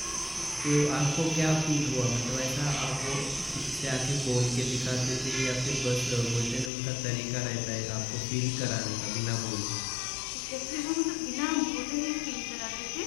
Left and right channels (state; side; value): drops out; right; at 6.7 s